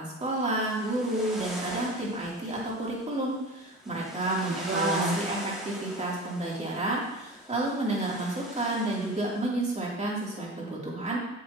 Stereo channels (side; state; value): both; normal; correlation 0.34